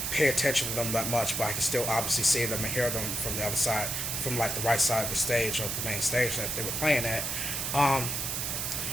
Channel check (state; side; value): noise; right; hiss, 1 dB below the sound